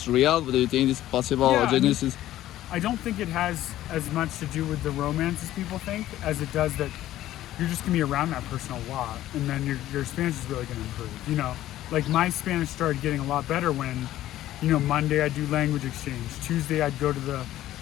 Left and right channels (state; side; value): quieter; right; 13.9 dB